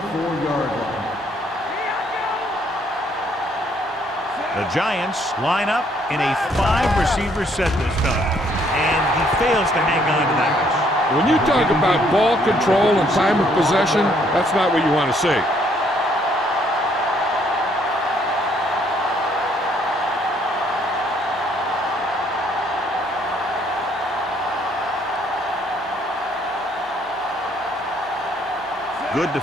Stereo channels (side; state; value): both; normal; correlation 0.66